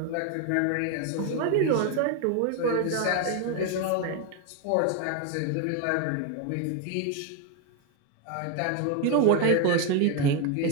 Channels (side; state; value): both; different; correlation 0.01